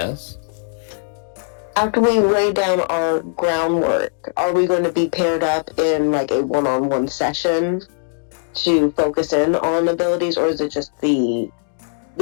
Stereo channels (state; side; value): silent; right; 66 dB below the other